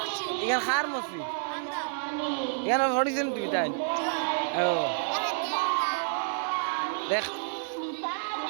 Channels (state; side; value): silent; left; digital silence